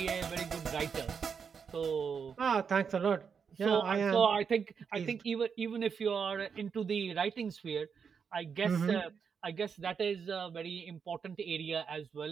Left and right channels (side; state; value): left; quieter; 6.4 dB